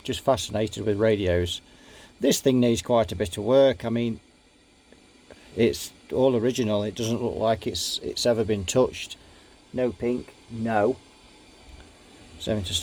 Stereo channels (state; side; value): identical; both; correlation 1.00